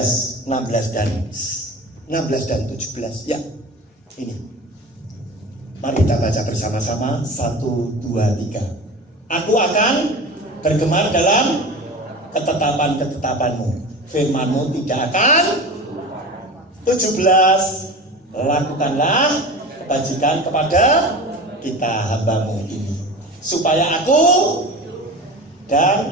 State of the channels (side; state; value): both; normal; correlation 0.33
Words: 16 dan 17. Ya, ini mari kita baca bersama-sama. 1, 2, 3. Aku akan bergemar dalam ketetapan-ketetapanmu, firmanmu tidak akan. 17. Lakukanlah kebajikan kepada kita hambamu ini, supaya aku